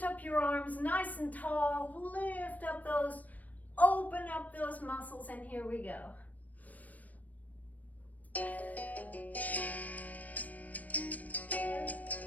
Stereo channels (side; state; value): right; late; 0.075 ms